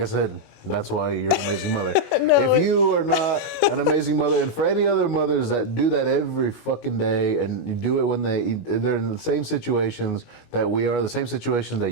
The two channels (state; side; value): late; right; 19 ms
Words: said, that's why you're an amazing mother. If you are not an amazing mother, and for any other mothers that do that every fucking day, and you do it when they're in the same situations that we are, the same situations that